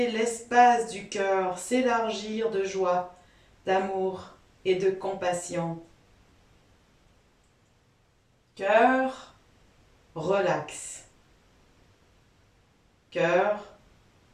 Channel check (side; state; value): both; identical; correlation 1.00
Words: l'espace du cœur s'élargir de joie, d'amour et de compassion. Cœur, relax. Cœur,